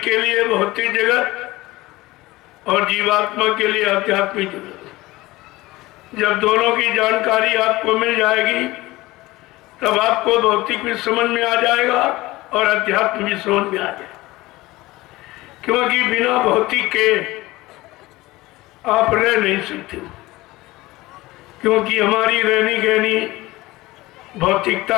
के लिए भौतिक जगत और जीवात्मा के लिए आध्यात्मिक जगत। जब दोनों की जानकारी आपको मिल जाएगी तब आपको भौतिक भी समझ में आ जाएगा और अध्यात्म भी समझ में आ जाएगा। क्योंकि बिना भौतिक के आप रह नहीं सकते, क्योंकि हमारी रहनी गहनी भौतिकता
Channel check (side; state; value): right; quieter; 19.4 dB